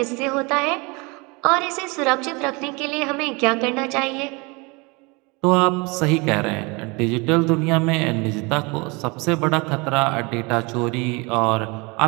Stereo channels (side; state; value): left; quieter; 27.6 dB